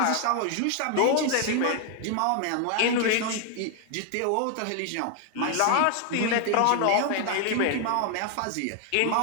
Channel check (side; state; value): both; different; correlation 0.00